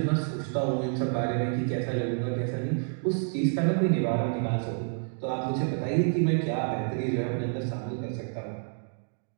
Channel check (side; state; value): left; silent; 59 dB below the other